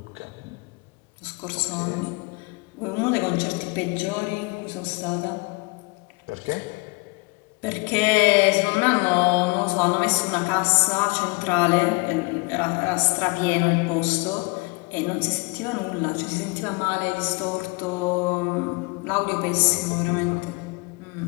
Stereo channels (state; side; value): quieter; right; 28.0 dB